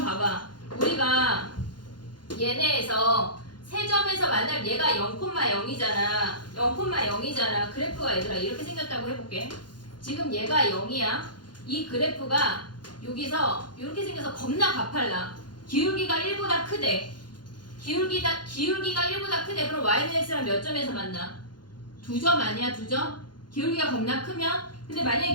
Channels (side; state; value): right; late; 0.71 ms